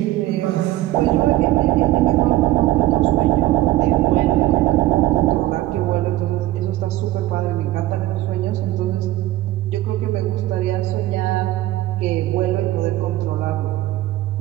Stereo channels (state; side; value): quieter; left; 15.8 dB